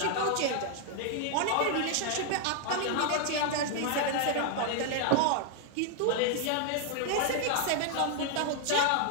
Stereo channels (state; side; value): different; both; correlation 0.00